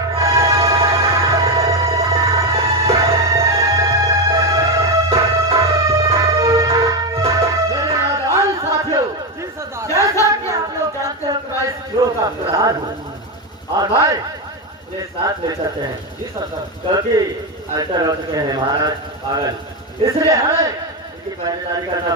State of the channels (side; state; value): both; normal; correlation 0.11